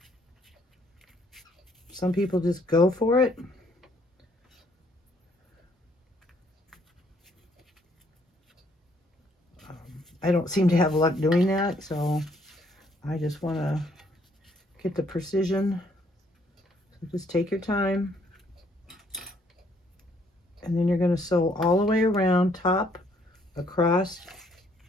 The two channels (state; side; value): normal; both; correlation 0.67